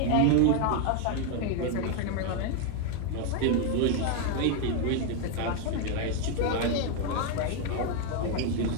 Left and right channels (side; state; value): both; different; correlation 0.01